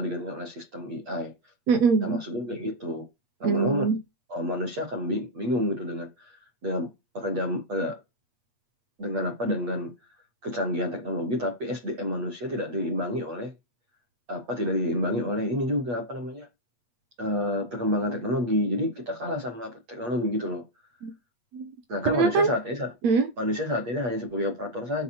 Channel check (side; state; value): left; late; 8.4 ms